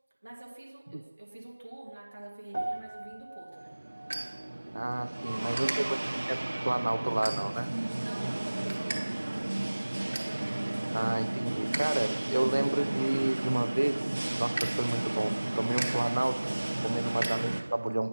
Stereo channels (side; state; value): both; inverted; correlation -1.00